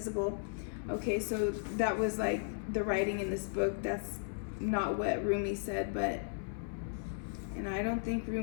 Okay, so that was like the writing in this book. That's not what Rumi said, and I don't think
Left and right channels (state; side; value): silent; right; 54 dB below the other